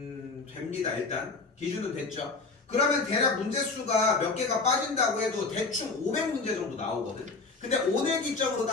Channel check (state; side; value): quieter; right; 4.0 dB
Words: 됩니다. 일단 기준은 됐죠? 그러면 대략 문제수가 몇 개가 빠진다고 해도 대충 500문제 정도 나오거든. 근데 오늘 기점으로